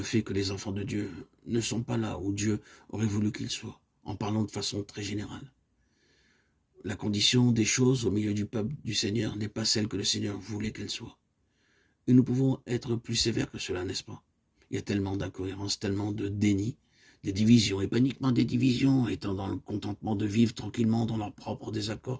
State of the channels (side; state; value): both; identical; correlation 1.00